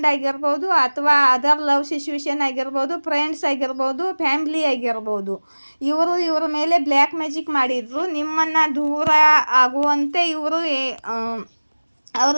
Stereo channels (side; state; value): both; inverted; correlation -1.00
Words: ಆಗಿರ್ಬೋದು, ಅಥವಾ ಅದರ್ ಲವ್ ಸಿಚುವೇಶನ್ ಆಗಿರ್ಬೋದು, ಫ್ರೆಂಡ್ಸ್ ಆಗಿರ್ಬೋದು, ಫ್ಯಾಮ್ಲಿ ಆಗಿರ್ಬೋದು. ಇವರ ಮೇಲೆ ಬ್ಲ್ಯಾಕ್ ಮ್ಯಾಜಿಕ್ ಮಾಡಿದ್ರು. ನಿಮ್ಮನ್ನು ದೂರ ಆಗುವಂತೆ ಇವರು ಅವ್ರ